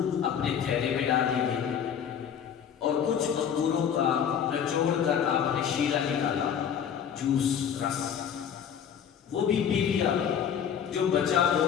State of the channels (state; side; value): quieter; right; 8.2 dB